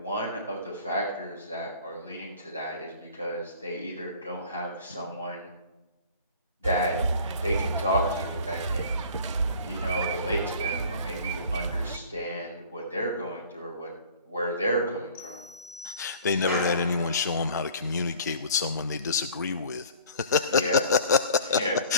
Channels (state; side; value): inverted; both; correlation -0.48